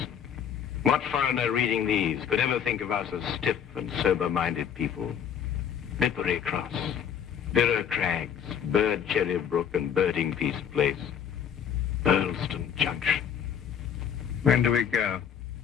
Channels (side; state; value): right; quieter; 8.5 dB